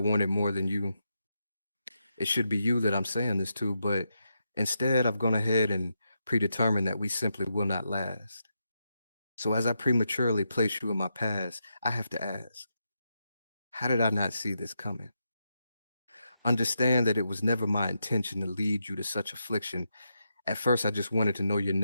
more than you. It should be you that I'm saying this to, but instead I've gone ahead and predetermined that we simply will not last. So as I prematurely place you in my past, I have to ask, how did I not see this coming? Understand that it was never my intention to lead you to such affliction. At first, I just wanted to know your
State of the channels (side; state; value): both; inverted; correlation -0.84